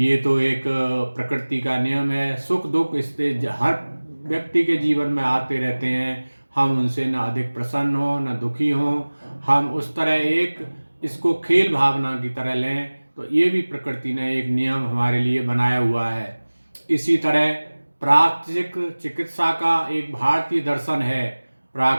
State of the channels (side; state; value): both; inverted; correlation -1.00